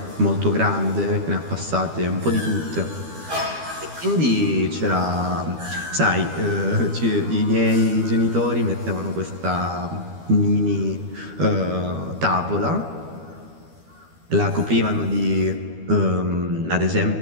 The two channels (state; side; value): late; left; 12 ms